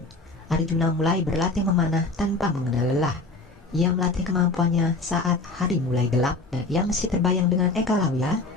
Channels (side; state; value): right; quieter; 3.3 dB